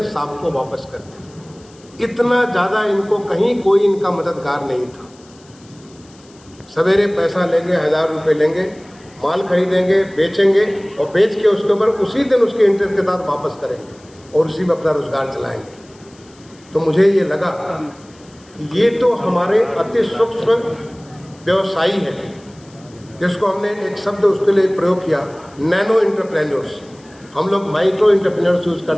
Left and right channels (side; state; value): left; noise; hiss, 27 dB below the sound